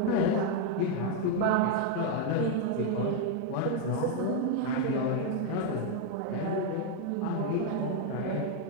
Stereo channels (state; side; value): different; both; correlation 0.01